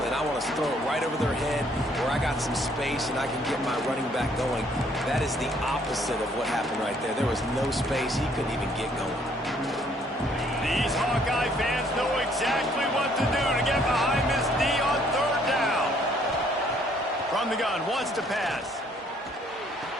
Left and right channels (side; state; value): both; normal; correlation 0.64